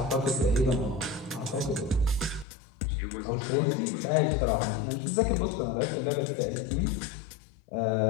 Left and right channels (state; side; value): drops out; right; at 2.5 s